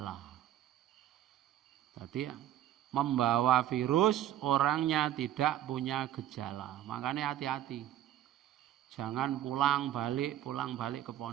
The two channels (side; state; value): left; quieter; 12.1 dB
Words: Jadi membawa virus orangnya tidak punya gejala. Makanya hati-hati. Jangan pulang balik ke